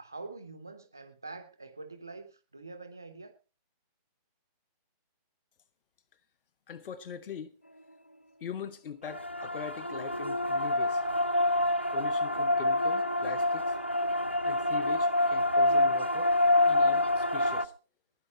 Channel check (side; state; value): both; inverted; correlation -0.66